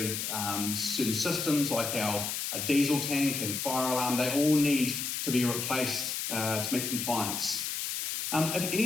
certain systems like our diesel tank and fire alarm. They all need to be replaced to meet compliance. If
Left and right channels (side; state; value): left; noise; hiss, 2 dB below the sound